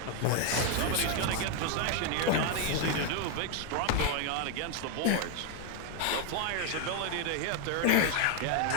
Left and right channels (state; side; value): different; both; correlation 0.01